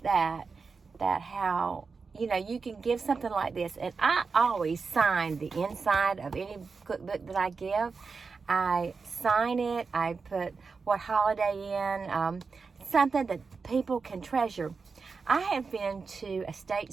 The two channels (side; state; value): left; quieter; 4.8 dB